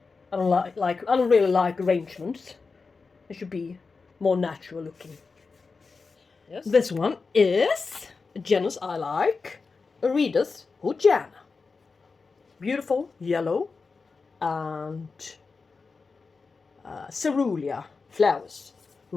I don't really like arrangements. It should be more natural looking. Yes. This one is a genus I like, Aerides Houlletiana. Beautiful yellow and cerulean flowers.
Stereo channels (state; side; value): quieter; right; 4.5 dB